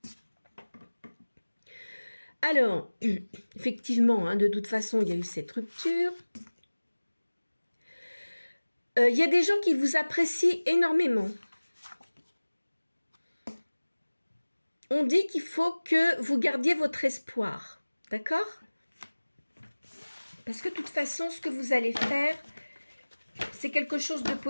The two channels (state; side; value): inverted; both; correlation -1.00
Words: Alors, effectivement, hein, de toute façon, il y a eu cette rupture. Il y a des gens qui vous apprécient énormément. On dit qu'il faut que vous gardiez votre espoir, d'accord? Parce que de toute façon, ce que vous allez faire, c'est quelque chose de